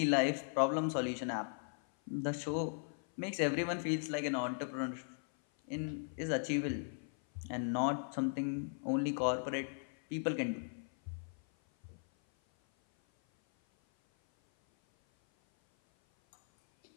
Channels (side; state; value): right; silent; 53 dB below the other